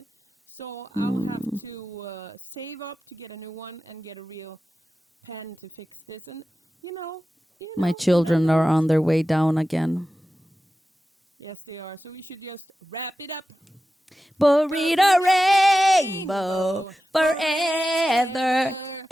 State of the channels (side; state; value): both; normal; correlation 0.93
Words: So I'll have to save up to get a new one and get a real pen to fix this. And you know. My children are on their way down again. Yes, they are. So we should just wrap it up. Burrito rainbow forever